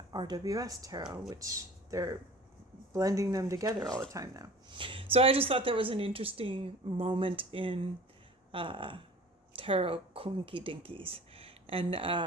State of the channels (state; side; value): normal; both; correlation 0.43